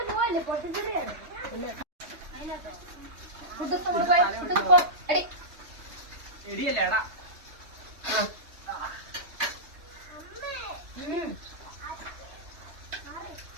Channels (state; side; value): late; left; 3.2 ms